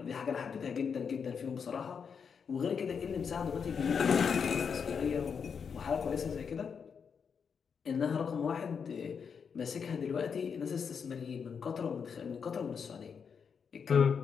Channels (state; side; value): quieter; right; 6.4 dB